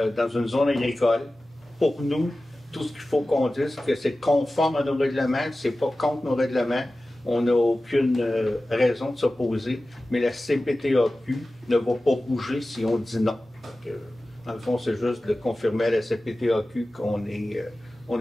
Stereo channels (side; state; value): both; normal; correlation 0.96